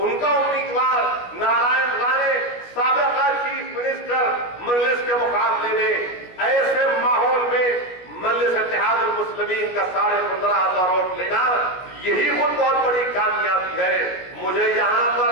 کا امیدوار نارائن رانے سابقہ چیف منسٹر مجلس کے مقابلے میں۔ ایسے ماحول میں مجلس اتحاد المسلمین کا 15,500 ووٹ لینا یہی خود بہت بڑی کامیابی ہے۔ مجھے یہاں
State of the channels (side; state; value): right; late; 17 ms